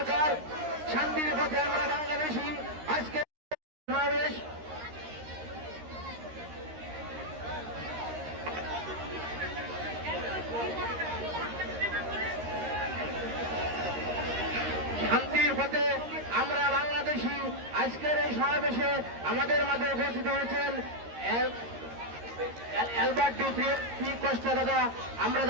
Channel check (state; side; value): late; left; 13 ms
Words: শান্তির পথে আমরা বাংলাদেশি। আজকে সমাবেশ শান্তির পথে আমরা বাংলাদেশি। আজকের এই সমাবেশে আমাদের মাঝে উপস্থিত হয়েছেন অ্যালবার্ট ডি কস্টা দাদা। আমরা